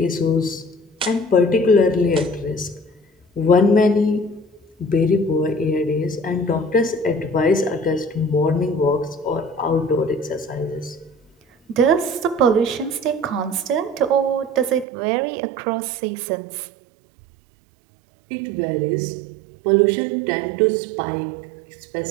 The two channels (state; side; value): drops out; left; at 14.9 s